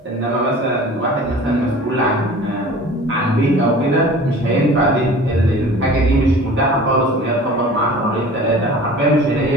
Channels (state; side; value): normal; both; correlation 0.42